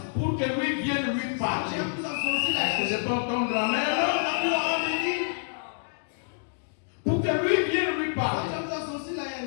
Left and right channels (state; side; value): silent; right; digital silence